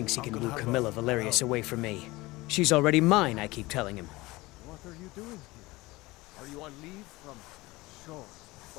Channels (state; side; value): quieter; right; 20.9 dB